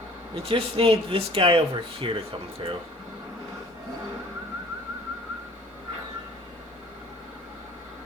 We just need this guy over here to come through.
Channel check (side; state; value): both; normal; correlation 0.50